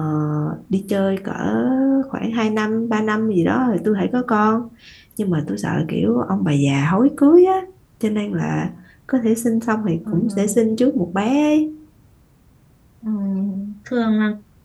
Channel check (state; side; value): identical; both; correlation 1.00